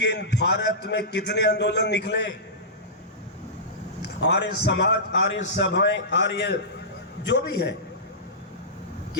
भारत में कितने आंदोलन निकले, आर्य समाज, आर्य सभाएं, आर्य जो भी है,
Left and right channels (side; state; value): both; normal; correlation -0.17